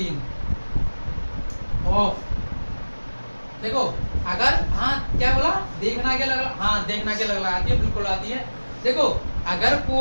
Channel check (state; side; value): inverted; both; correlation -1.00